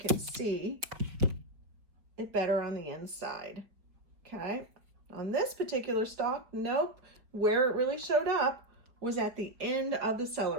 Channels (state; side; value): late; left; 5.0 ms